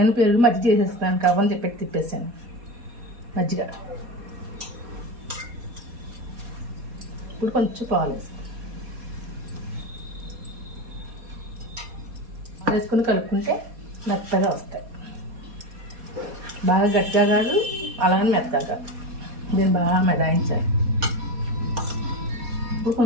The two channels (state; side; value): late; left; 4.2 ms